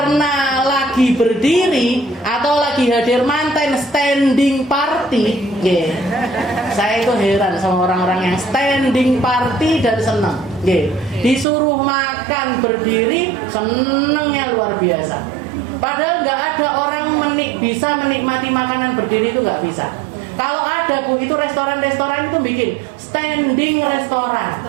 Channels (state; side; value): drops out; left; at 11.5 s